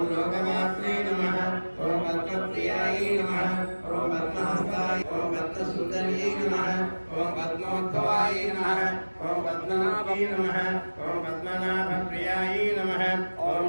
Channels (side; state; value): both; inverted; correlation -1.00